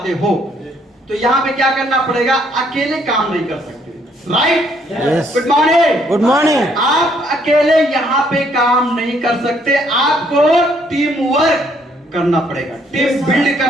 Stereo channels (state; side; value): normal; both; correlation 0.67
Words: हो तो यहाँ पे क्या करना पड़ेगा? अकेले काम नहीं कर सकते, right? Good morning. Good morning. आप अकेले यहाँ पे काम नहीं कर सकते, आपको टीम वर्क करना पड़ेगा, टीम बिल्ड